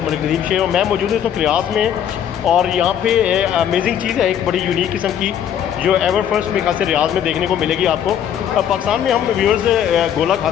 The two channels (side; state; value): right; quieter; 9.4 dB